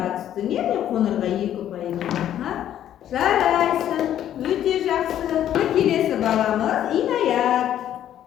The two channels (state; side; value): quieter; right; 11.1 dB